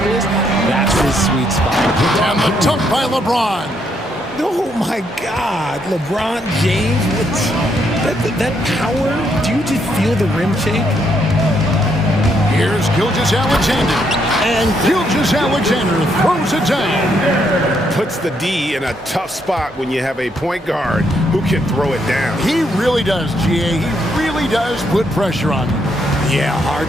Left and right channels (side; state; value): both; normal; correlation 0.75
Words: that's his sweet spot. And the dunk by LeBron. Oh, my God. LeBron James, that power. Do you just feel the rim shake? Here's Gilgeous-Alexander. And Gilgeous-Alexander throws it down. Puts the D in a tough spot when you have a point guard who can throw it down. He really does, GA. He really does put pressure on him. Yeah, hard